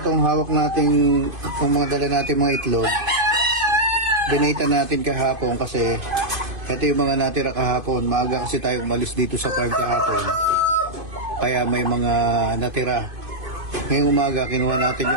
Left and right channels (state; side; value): late; left; 2.5 ms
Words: hawak nating, itong mga dala natin mga itlog, binita natin kahapon kasi ito yung mga natira kahapon. Maaga kasi tayo umalis dito sa farm kahapon. Kaya may mga natira. Ngayong umaga, kinuha natin